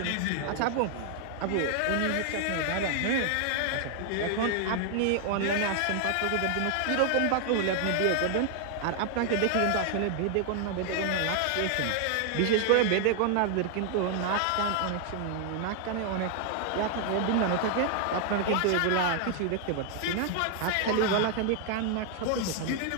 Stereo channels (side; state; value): both; different; correlation 0.00